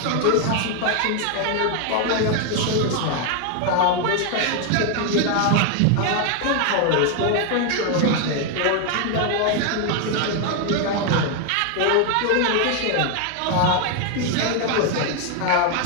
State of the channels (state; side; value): different; both; correlation 0.01